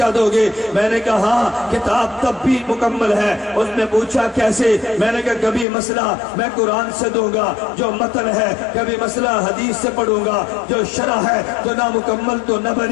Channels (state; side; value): drops out; right; at 5.7 s